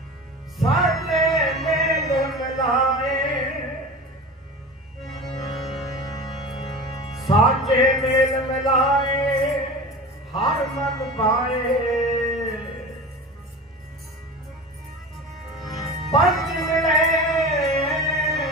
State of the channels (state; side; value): normal; both; correlation 0.32